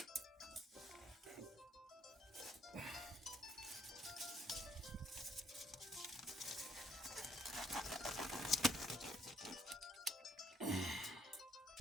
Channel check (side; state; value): both; normal; correlation 0.67